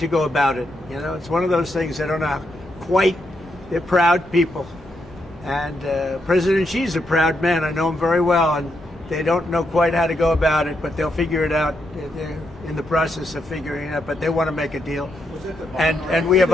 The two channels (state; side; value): normal; both; correlation 0.81